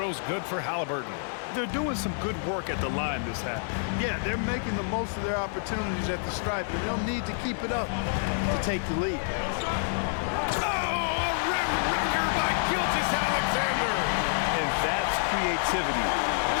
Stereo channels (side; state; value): right; silent; digital silence